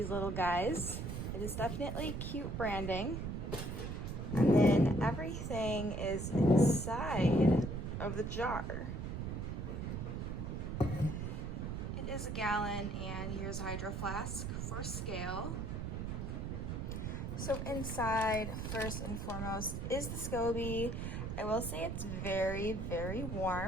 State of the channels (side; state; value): right; noise; rumble, 4 dB below the sound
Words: little guys. It is definitely cute branding. And then everything is inside of the jar. It is a gallon, and here's a hydro flask for scale. So inside, first and foremost, is the Scoby. I will say it's very, very